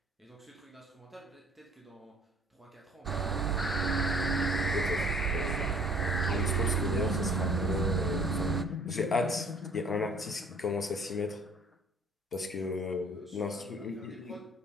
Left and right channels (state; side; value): normal; both; correlation 0.55